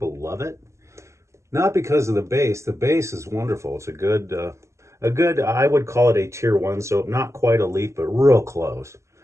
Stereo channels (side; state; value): left; late; 0.14 ms